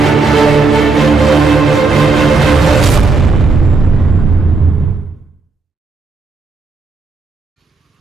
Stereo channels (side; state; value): left; quieter; 3.9 dB